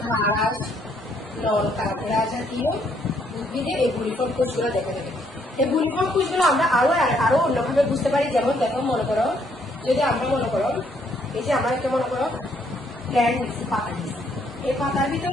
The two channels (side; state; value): both; normal; correlation 0.69